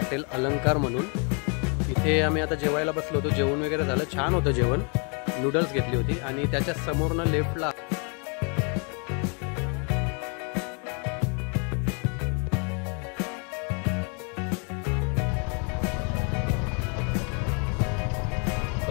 अलंकार म्हणून। इथे आम्ही आता जेवायला बसलो होतो, जेवण वगैरे झालं, छान होतं जेवण, नूडल्स घेतली होती आणि त्याच्या समोरनं लेफ्टला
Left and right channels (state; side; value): quieter; right; 36.6 dB